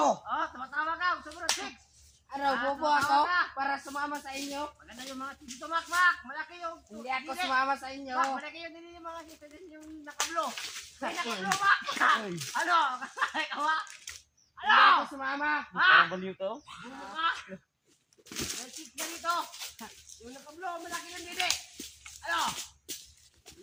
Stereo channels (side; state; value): both; identical; correlation 1.00